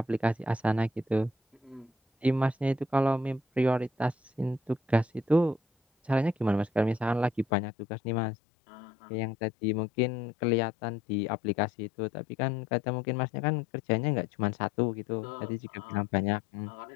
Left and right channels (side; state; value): right; drops out; at 7.5 s